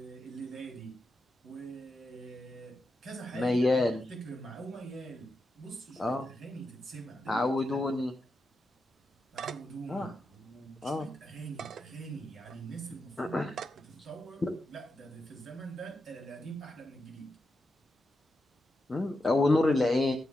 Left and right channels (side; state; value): both; normal; correlation 0.87